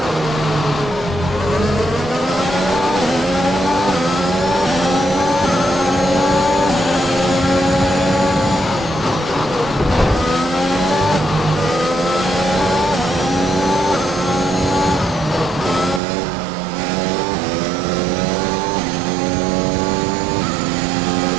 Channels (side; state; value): left; drops out; at 16.0 s